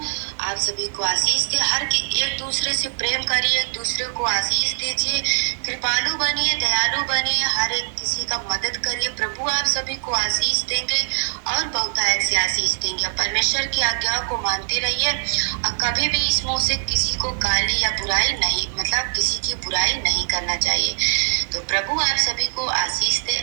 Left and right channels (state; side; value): silent; left; digital silence